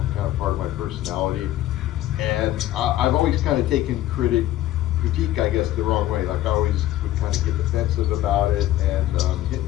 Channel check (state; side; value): quieter; right; 14.1 dB